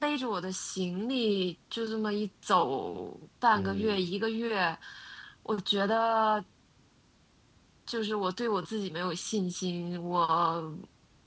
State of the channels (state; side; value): identical; both; correlation 1.00